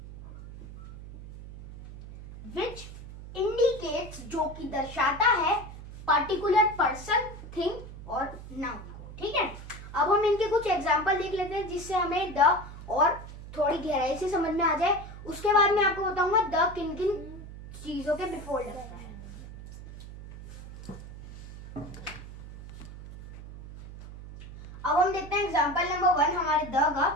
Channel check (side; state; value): right; noise; hum, 14 dB below the sound